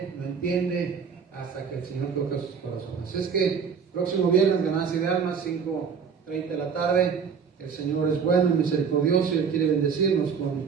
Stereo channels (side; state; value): left; quieter; 6.4 dB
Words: no entiende, hasta que el Señor toca sus corazones. Así es que próximo viernes, Ganancia de Almas, 5:30 de la tarde, el Señor es bueno y misericordioso y Él quiere bendecirnos